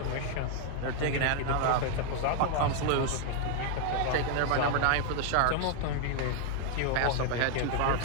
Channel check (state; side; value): different; both; correlation 0.00